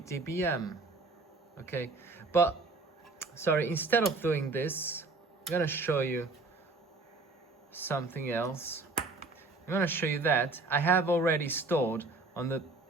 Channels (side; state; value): left; quieter; 3.7 dB